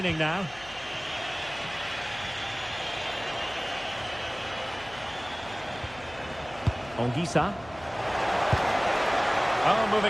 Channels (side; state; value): left; noise; hum, 20 dB below the sound